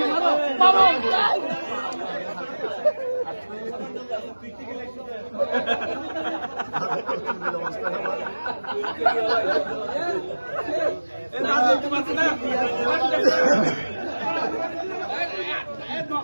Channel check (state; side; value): inverted; both; correlation -1.00